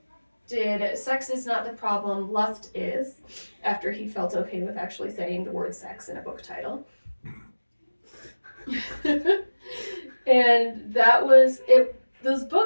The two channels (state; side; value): inverted; both; correlation -1.00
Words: did Sex Is Not the Problem, Lust Is, after he felt okay with actually saying the word sex in a book title. And that was it. Those